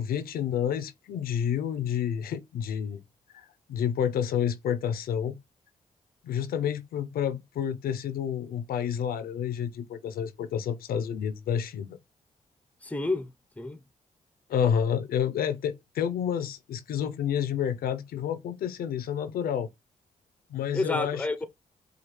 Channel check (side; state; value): right; quieter; 7.7 dB